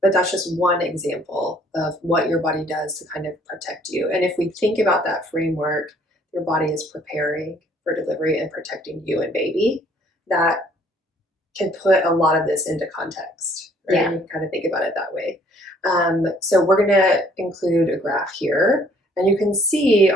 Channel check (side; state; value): both; normal; correlation 0.60